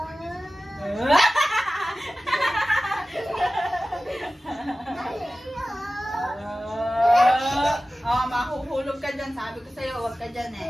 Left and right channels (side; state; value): both; normal; correlation 0.96